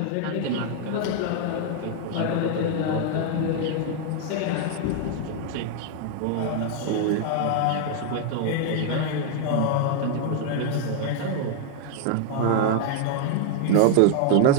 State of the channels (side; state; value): both; different; correlation 0.00